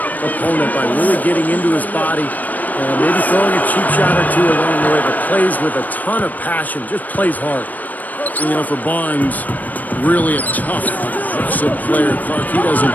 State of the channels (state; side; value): late; right; 0.081 ms